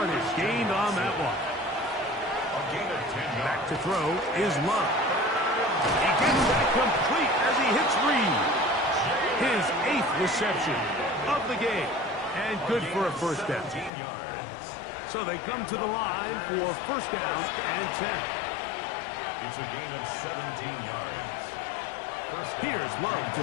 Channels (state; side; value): drops out; right; at 13.9 s